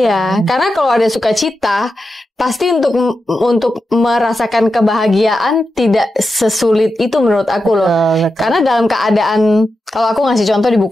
Iya, karena kalau ada sukacita pasti untuk merasakan kebahagiaan tidak sesulit itu menurut aku loh. Betul. Karena dalam keadaan, kalau aku ngasih contoh di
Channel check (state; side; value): normal; both; correlation 0.89